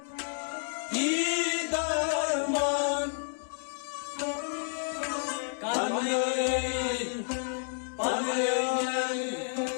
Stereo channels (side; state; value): right; silent; 58 dB below the other